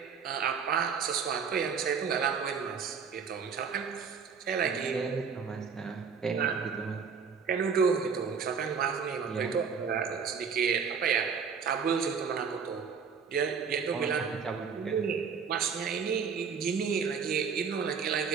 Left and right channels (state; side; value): quieter; left; 6.1 dB